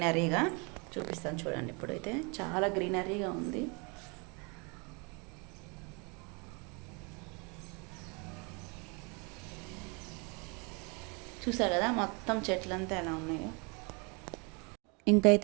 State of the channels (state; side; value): quieter; left; 31.8 dB